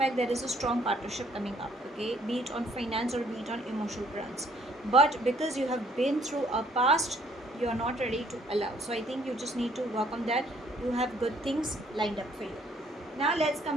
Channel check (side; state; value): both; normal; correlation 0.63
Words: there is a strong partnership coming up, okay? Be it on finance or be it on emotional grounds. But because you have been through a past, you are not ready to allow. So I think you just need to work on that. You have good things lined up for you. Now let's